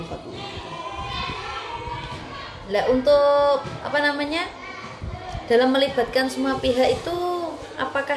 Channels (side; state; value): both; identical; correlation 1.00